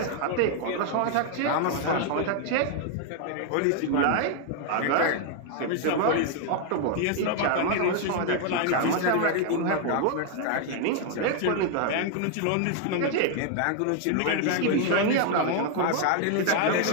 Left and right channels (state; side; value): different; both; correlation 0.00